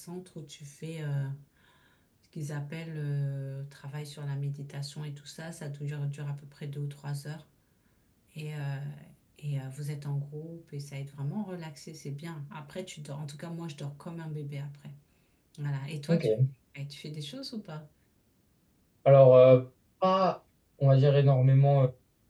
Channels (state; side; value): identical; both; correlation 1.00